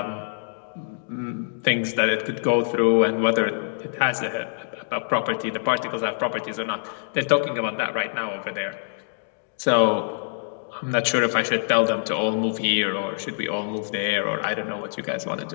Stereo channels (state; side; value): silent; right; digital silence